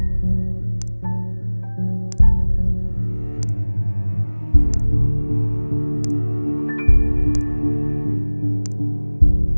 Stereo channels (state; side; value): inverted; both; correlation -1.00